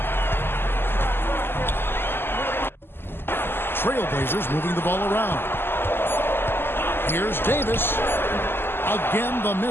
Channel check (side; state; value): right; late; 0.11 ms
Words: Trailblazers moving the ball around. Here's Davis. Again, the